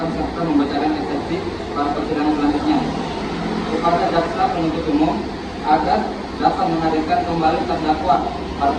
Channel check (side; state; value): both; identical; correlation 1.00